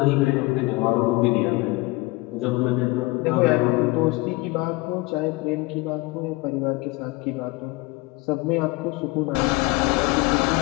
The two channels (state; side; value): quieter; right; 23.0 dB